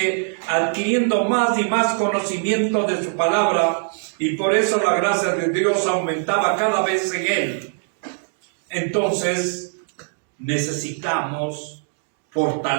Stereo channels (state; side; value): silent; left; 64 dB below the other